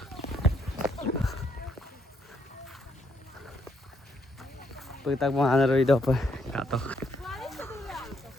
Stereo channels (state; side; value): normal; both; correlation 0.73